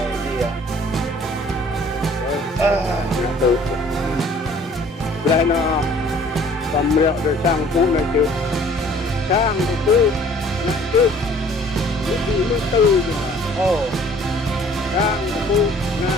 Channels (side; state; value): both; normal; correlation 0.54